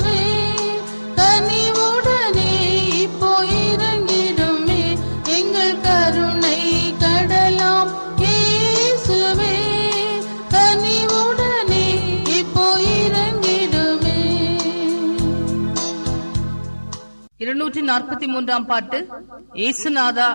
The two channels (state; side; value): inverted; both; correlation -1.00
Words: கனிவுடனே இப்போ இறங்கிடுமே எங்கள் கருணை கடலாம் இயேசுவே கனிவுடனே இப்போ இறங்கிடுமே. 243 பாட்டு. ஏசுநாதா